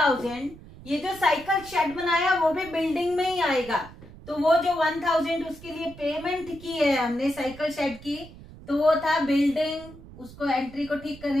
ये जो साइकिल शेड बनाया वो भी बिल्डिंग में ही आएगा, तो वो जो 1000 उसके लिए पेमेंट की है हमने साइकिल शेड की, तो वो था बिल्डिंग, उसको एंट्री को ठीक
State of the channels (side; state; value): right; noise; rumble, 18 dB below the sound